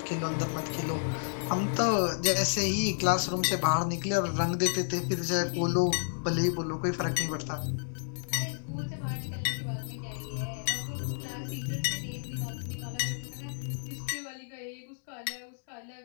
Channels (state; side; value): silent; right; digital silence